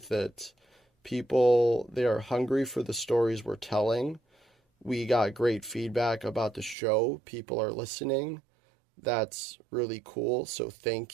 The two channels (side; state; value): left; drops out; at 6.8 s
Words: it. People, they are hungry for the stories we're telling. We got great feedback about the show. People are listening. That's really cool, so